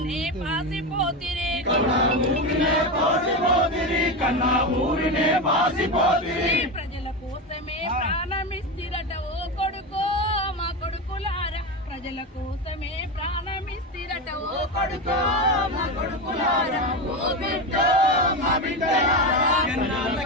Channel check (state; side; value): normal; both; correlation 0.17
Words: పాసిపోతిరి కన్న ఊరినే పాసిపోతిరి కన్న ఊరినే పాసిపోతిరి ప్రజల కోసమే ప్రాణమిస్తిరట ఓ కొడుకో మా కొడుకులారా ప్రజల కోసమే ప్రాణమిస్తిరట ఓ కొడుకో మా కొడుకులారా ఓ బిడ్డ మా బిడ్డలారా